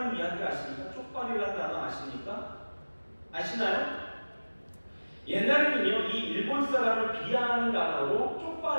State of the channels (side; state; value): both; inverted; correlation -1.00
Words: 이야기 아십니까? 쪽발이라는 단어 아십니까? 아시나요? 옛날에는요, 이 일본 사람을 비하하는 단어로